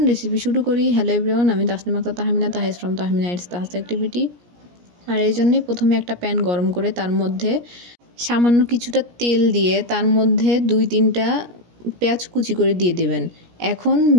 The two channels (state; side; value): late; left; 17 ms